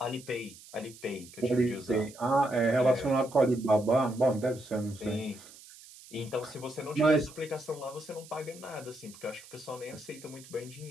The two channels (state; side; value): noise; right; hiss, 19 dB below the sound